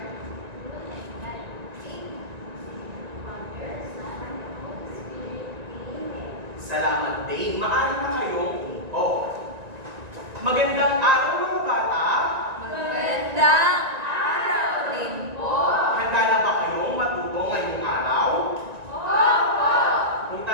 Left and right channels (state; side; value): late; left; 1.9 ms